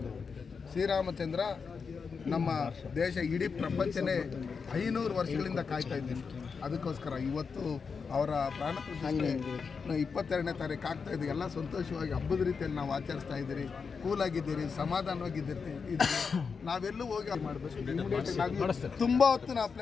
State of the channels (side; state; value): right; quieter; 5.5 dB